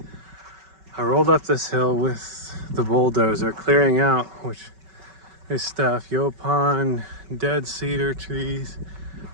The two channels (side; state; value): left; late; 5.3 ms